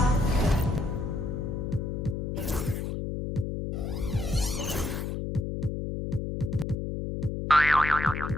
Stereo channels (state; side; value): noise; left; hum, 3 dB below the sound